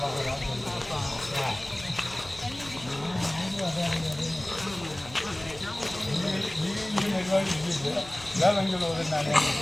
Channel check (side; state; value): left; noise; hum, 18 dB below the sound